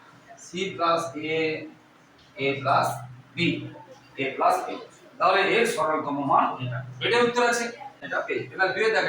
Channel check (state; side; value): identical; both; correlation 1.00